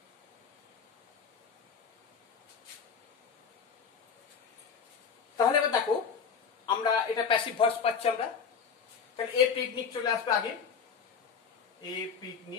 তাহলে এবার দেখো আমরা এটা প্যাসিভ ভয়েস পাচ্ছি আমরা। তাহলে এ পিকনিক চলে আসবে আগে, এ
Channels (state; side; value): quieter; right; 6.3 dB